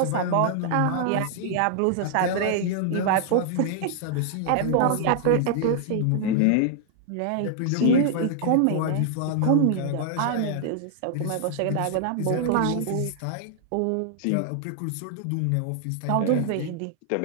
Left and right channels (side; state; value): both; different; correlation -0.01